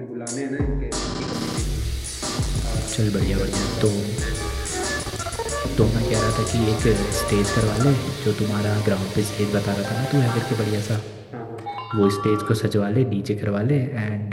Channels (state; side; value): identical; both; correlation 1.00